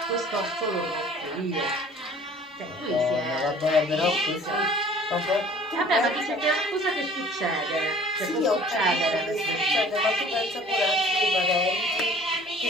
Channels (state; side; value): normal; both; correlation 0.50